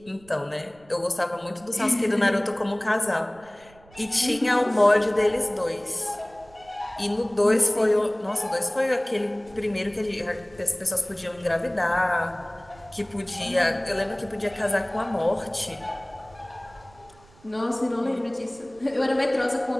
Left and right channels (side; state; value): right; noise; rumble, 26 dB below the sound